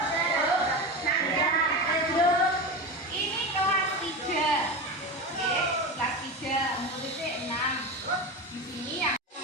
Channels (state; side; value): normal; both; correlation 0.23